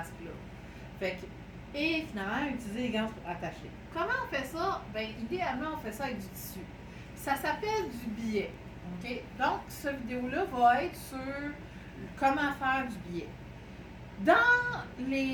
Fait que et finalement, utiliser les gants pour attacher. Comment on fait ça? Bien, idéalement, on fait ça avec du tissu. Ça s'appelle du billet. OK? Donc, cette vidéo-là va être sur comment faire du billet. Dans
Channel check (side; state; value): both; identical; correlation 1.00